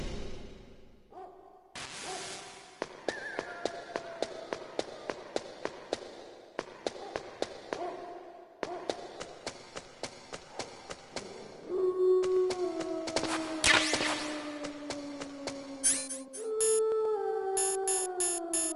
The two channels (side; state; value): both; identical; correlation 1.00